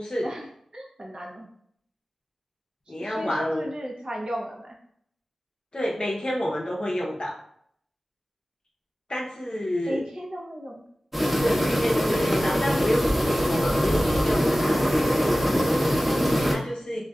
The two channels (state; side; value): normal; both; correlation 0.96